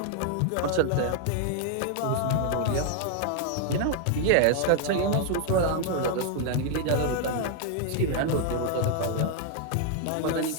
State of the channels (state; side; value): different; both; correlation 0.00